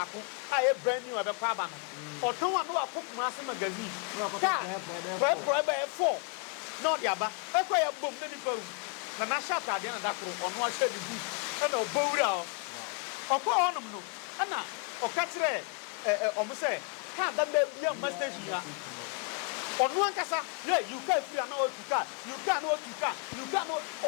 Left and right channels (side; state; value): right; quieter; 35.6 dB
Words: a e brand new obekọ aba no oton wa no akọ Kumasi magazine for e 4 no dia ba e ko ya bom na nipa na na sha ta dia na dakoro ono a sha di e na obowura o okọ onum no na oka kire omo say car da be bia station ya onu ankasa you can feel na you can